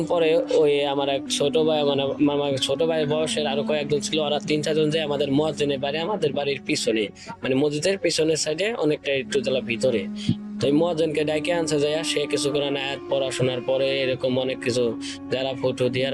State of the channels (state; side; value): identical; both; correlation 1.00